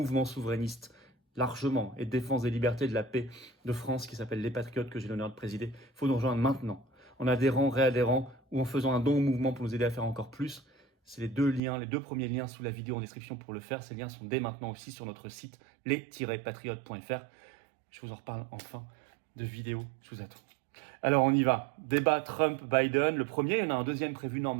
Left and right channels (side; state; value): left; drops out; at 11.6 s